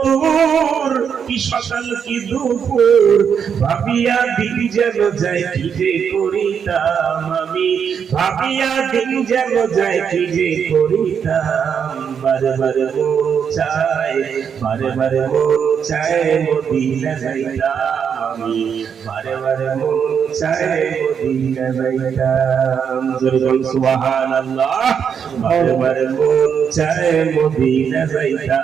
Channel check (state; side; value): quieter; left; 7.3 dB